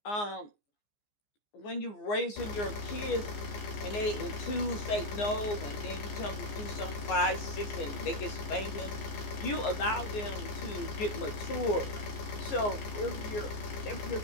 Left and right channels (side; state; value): right; late; 15 ms